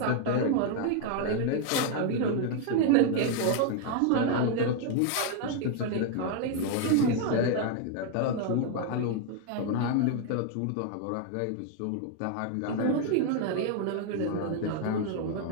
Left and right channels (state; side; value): different; both; correlation 0.00